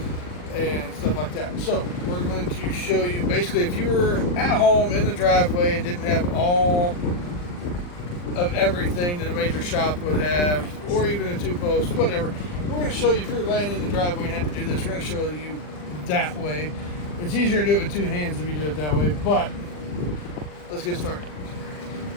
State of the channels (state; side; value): late; right; 40 ms